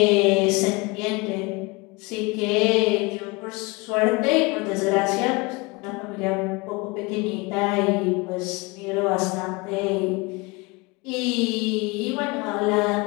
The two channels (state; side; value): quieter; right; 25.9 dB